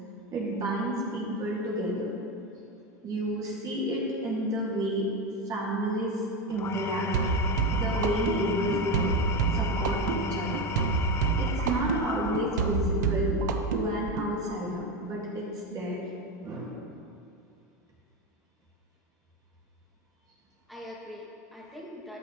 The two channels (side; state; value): both; normal; correlation 0.16